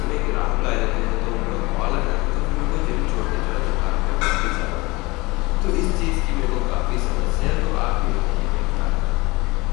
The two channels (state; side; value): quieter; right; 23.2 dB